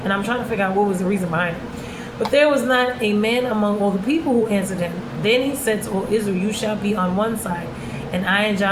And I'm trying to figure out what was the reason behind it. But there was not a man among all the people who answered him. Then he said to all Israel, you shall be on one side, and I and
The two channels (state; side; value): identical; both; correlation 1.00